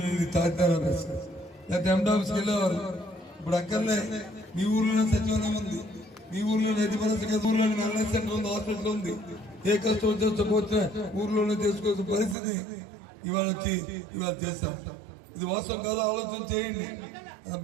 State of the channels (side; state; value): left; drops out; at 12.4 s